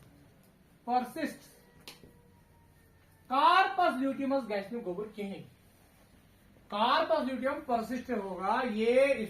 कार्पस ल्यूटियमस गैस्ट्रिक गोबर कहीं कार्पस ल्यूटियम परसिस्ट होगा ये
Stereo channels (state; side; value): identical; both; correlation 1.00